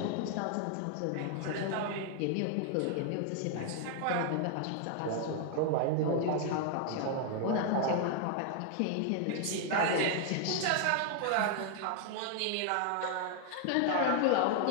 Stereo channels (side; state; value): both; different; correlation 0.00